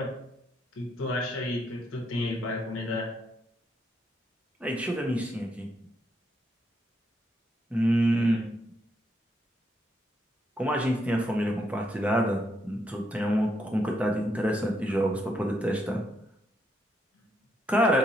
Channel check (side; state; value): both; normal; correlation 0.77